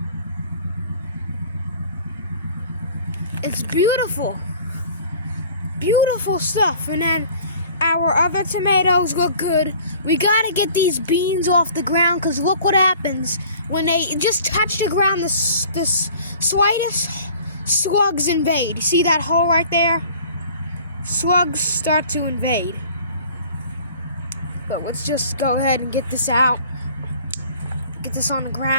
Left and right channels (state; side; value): inverted; both; correlation -0.49